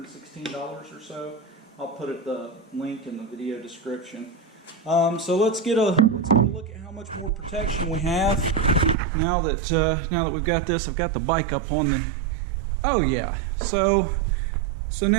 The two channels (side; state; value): left; drops out; at 9.0 s